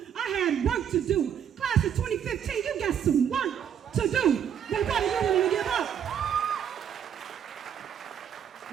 I had work to do. Class of 2015, you got some work to do. But what are you willing to give up?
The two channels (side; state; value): left; quieter; 8.8 dB